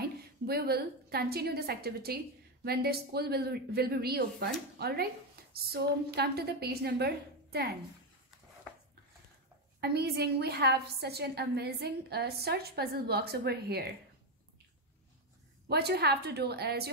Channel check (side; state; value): both; normal; correlation 0.07